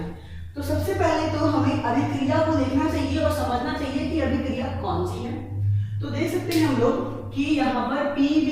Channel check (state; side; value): identical; both; correlation 1.00